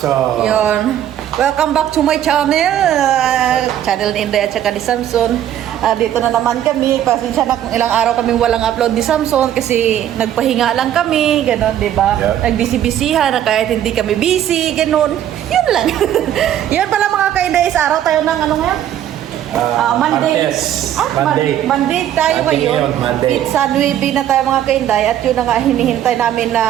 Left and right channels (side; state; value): left; quieter; 11.2 dB